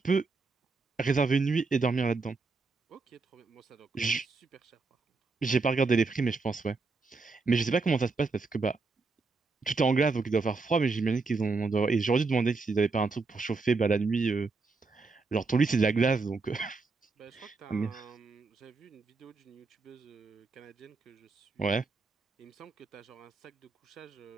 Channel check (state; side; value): quieter; left; 4.0 dB